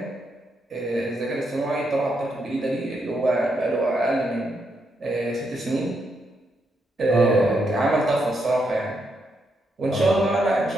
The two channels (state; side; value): normal; both; correlation 0.80